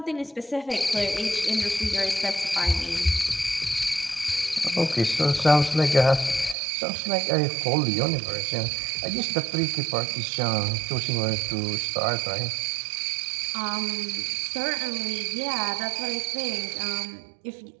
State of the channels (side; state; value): left; drops out; at 6.6 s